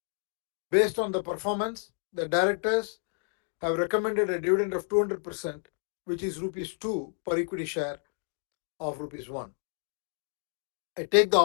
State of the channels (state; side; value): silent; right; 58 dB below the other